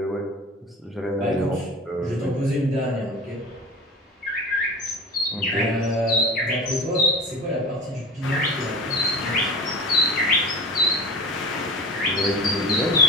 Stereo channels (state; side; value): normal; both; correlation 0.33